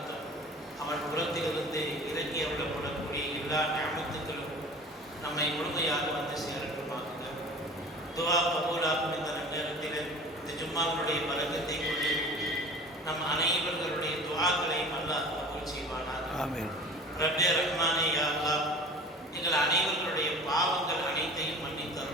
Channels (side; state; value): both; normal; correlation 0.41